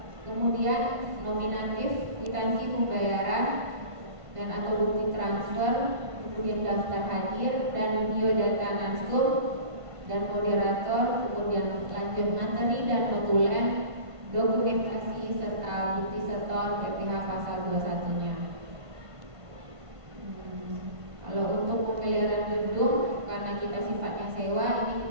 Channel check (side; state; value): left; late; 1.5 ms